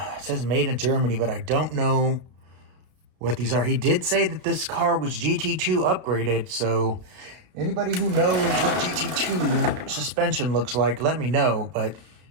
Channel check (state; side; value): late; left; 32 ms